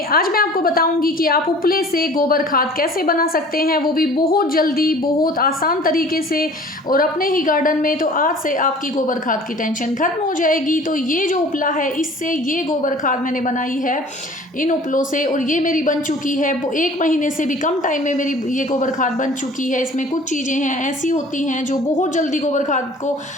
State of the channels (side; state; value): both; normal; correlation 0.47